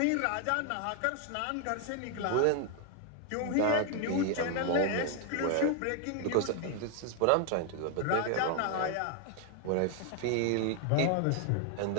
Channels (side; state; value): both; different; correlation 0.00